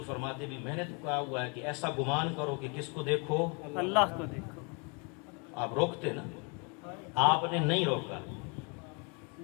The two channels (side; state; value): right; quieter; 33.9 dB